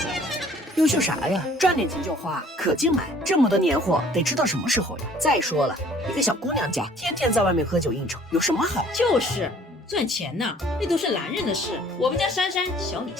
优秀啥呀？赚点钱就花，可劲买。这么多年货，得吃到什么时候呀？再说了，一个小姑娘家，天天在外面喝酒应酬，有什么好？就是赚钱呢，那都是男人的事。我们家珊珊小你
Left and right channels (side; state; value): both; normal; correlation 0.55